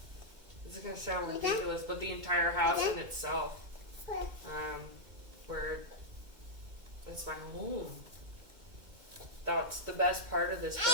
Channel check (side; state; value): left; late; 2.1 ms